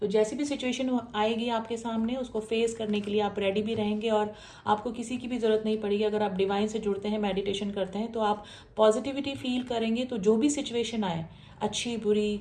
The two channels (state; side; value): identical; both; correlation 1.00